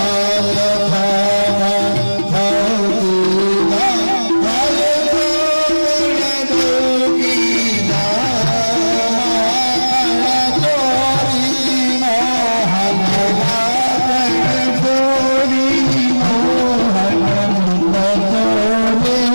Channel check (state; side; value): inverted; both; correlation -1.00